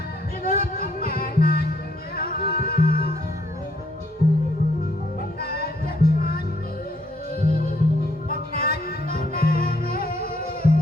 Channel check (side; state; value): both; normal; correlation 0.68